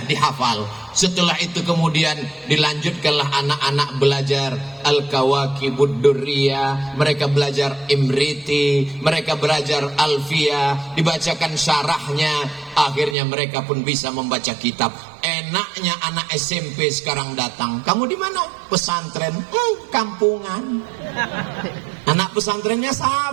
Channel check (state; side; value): drops out; left; at 13.2 s